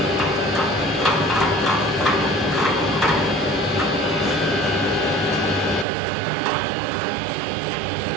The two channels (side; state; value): left; drops out; at 5.9 s